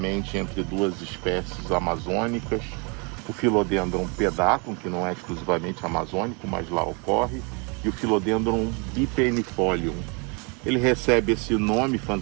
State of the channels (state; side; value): quieter; left; 32.9 dB